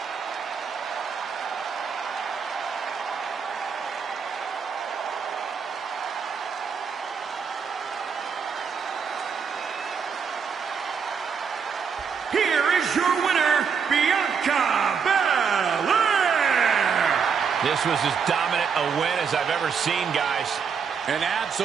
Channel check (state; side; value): quieter; left; 6.4 dB